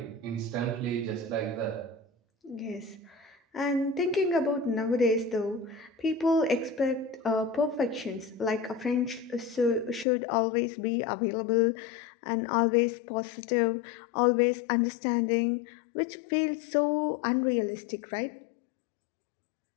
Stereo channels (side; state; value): right; drops out; at 10.1 s